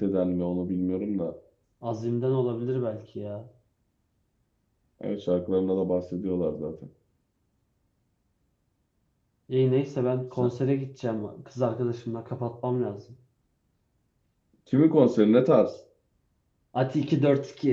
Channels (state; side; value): identical; both; correlation 1.00